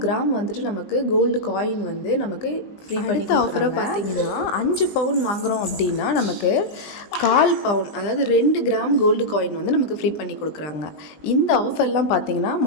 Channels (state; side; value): late; right; 20 ms